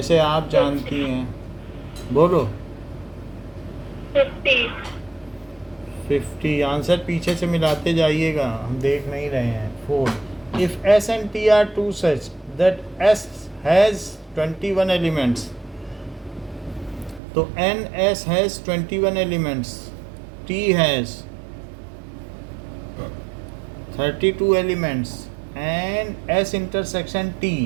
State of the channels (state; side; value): drops out; left; at 17.2 s